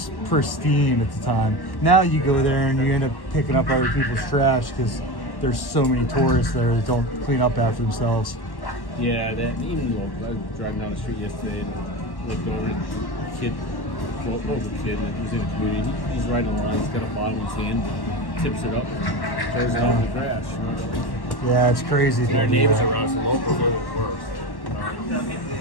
pristine at the time. Now you go there and you end up picking up other people's trash because there's so many tourists there that don't clean up after themselves. Yeah, that even though I was driving down the street yesterday and looked over at a kid, like he was in the community, he's riding around, he's got a bottle in his hand, tips it up, throws it out in the trash. You know? Yeah, it's crazy. Our neighbors around us, the locals are the worst.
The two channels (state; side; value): late; right; 1.1 ms